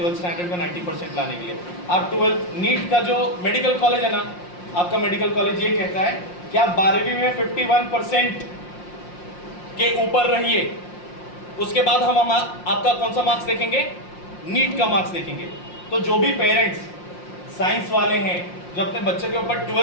स्टैंडर्ड में 90% लाने के लिए। आप 12th नीट का जो मेडिकल कॉलेज है ना, आपका मेडिकल कॉलेज ये कहता है कि आप 12वीं में 51% के ऊपर रहिए, उसके बाद हम आपका कौन सा मार्क्स देखेंगे, नीट का मार्क्स देखेंगे। तो जो भी पेरेंट्स साइंस वाले हैं जो अपने बच्चे के ऊपर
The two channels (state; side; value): late; right; 5.6 ms